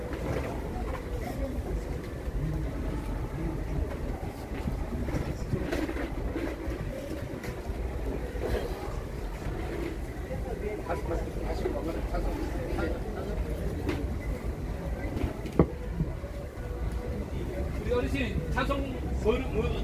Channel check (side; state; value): both; identical; correlation 1.00